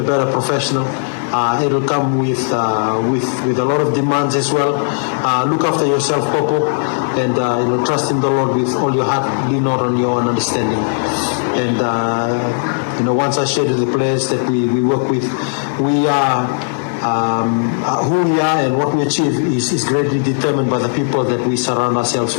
better professional. It'll come with a lot of demands as well. Look after yourself, Popo, and you know, trust in the Lord with all your heart. Lean not on your own understanding. And you know, once I shared with the players that we work with, we are. Who we are and what we achieve is greatly determined by the people that we surround ourselves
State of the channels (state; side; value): silent; right; digital silence